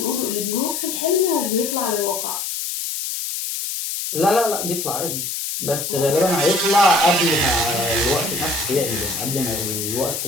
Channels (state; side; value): noise; left; hiss, 4 dB below the sound